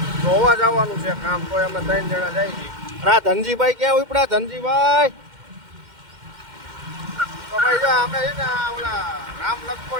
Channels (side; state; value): left; late; 2.1 ms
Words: જોવા જવાનું છે કામ, તો અમે 3 જણા જઈએ છીએ. અને આ ધનજીભાઈ ક્યાં ઉપડા? ધનજીભાઈ તો ભાઈ જો અમે છે ને ઓલા રામ